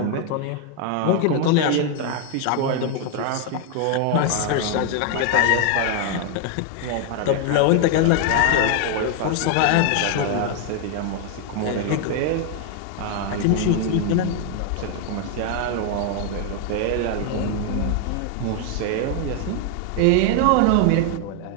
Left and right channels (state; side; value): different; both; correlation 0.00